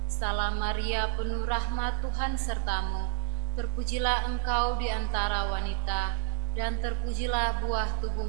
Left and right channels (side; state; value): left; silent; 58 dB below the other